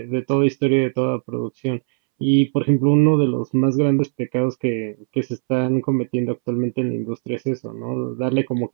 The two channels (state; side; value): silent; left; 66 dB below the other